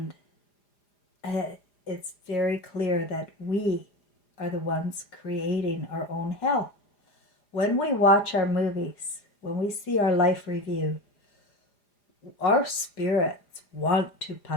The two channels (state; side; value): late; right; 4.9 ms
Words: it's very clear that we are the ones creating our own hell. When we watch our movies, when we see our life review, our spirits want to